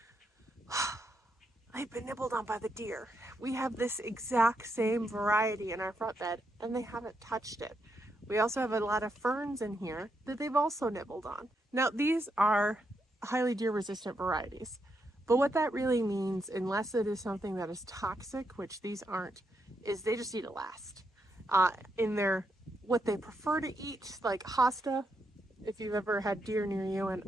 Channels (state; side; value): normal; both; correlation 0.81